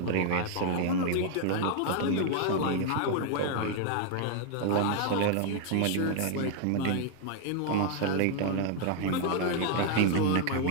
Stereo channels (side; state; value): both; different; correlation 0.00